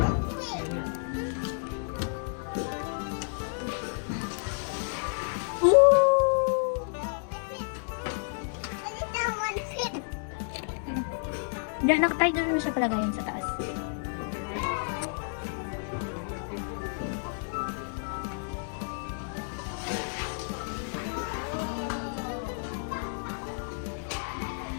Diyan, nakatay doon na siya palagayan sa taas.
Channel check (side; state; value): right; silent; digital silence